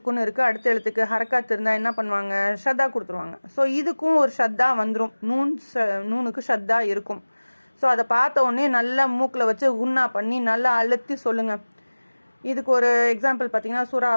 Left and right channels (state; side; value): inverted; both; correlation -1.00